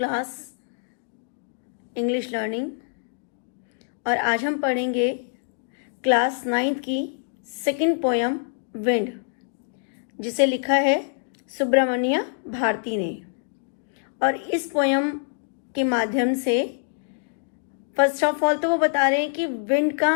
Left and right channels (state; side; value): silent; right; digital silence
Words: English learning. और आज हम पढ़ेंगे क्लास 9th की सेकंड पोयम विंड, जिसे लिखा है सुब्रमण्य भारती ने। और इस पोयम के माध्यम से फर्स्ट ऑफ ऑल तो वो बता रहे हैं कि विंड का